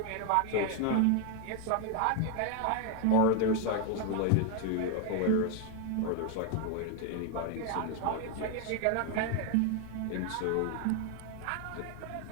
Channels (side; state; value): both; different; correlation 0.01